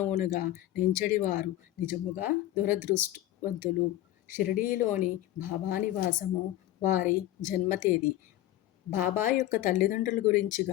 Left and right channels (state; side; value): quieter; right; 14.3 dB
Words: నెంచెడివారు నిజముగా దురదృష్టవంతులు. షిరిడీలోని బాబా నివాసము, వారి జన్మతేదీ, బాబా యొక్క తల్లిదండ్రుల గురించి